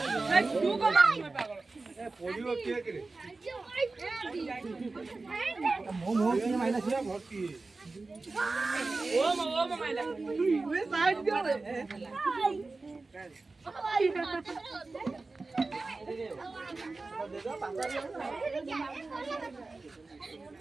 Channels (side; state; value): left; quieter; 3.6 dB